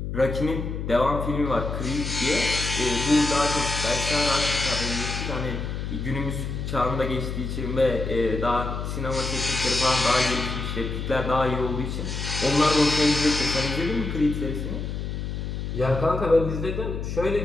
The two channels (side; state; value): left; noise; hum, 4 dB below the sound